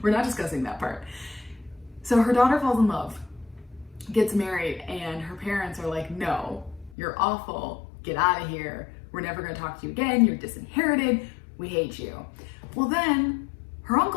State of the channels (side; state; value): right; drops out; at 7.0 s